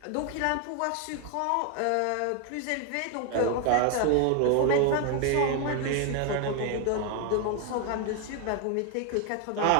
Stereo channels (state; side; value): different; both; correlation 0.01